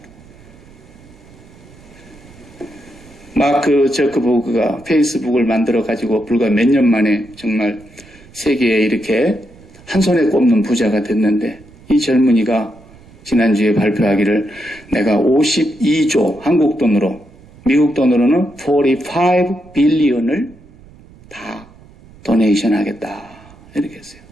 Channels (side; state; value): right; noise; rumble, 24 dB below the sound